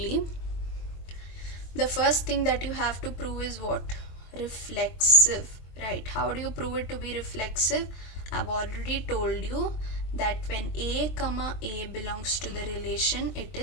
The first thing that you have to prove is what? Reflexive, right? How do you prove it to be reflexive? I've already told you that when A comma A belongs to the relation, it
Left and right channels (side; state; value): right; late; 23 ms